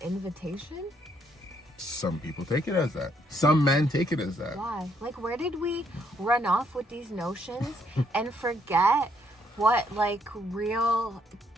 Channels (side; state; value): both; normal; correlation 0.71